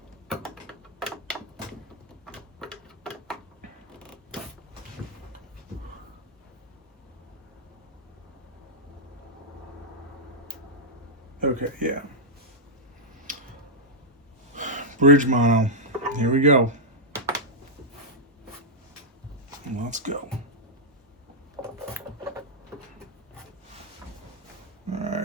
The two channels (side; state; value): both; normal; correlation -0.05